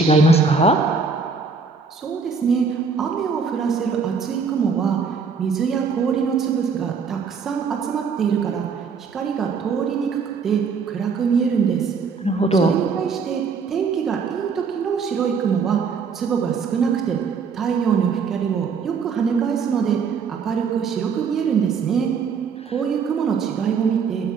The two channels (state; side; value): quieter; left; 5.3 dB